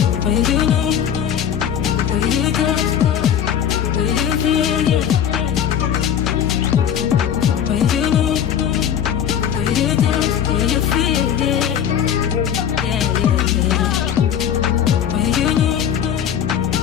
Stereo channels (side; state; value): right; quieter; 9.1 dB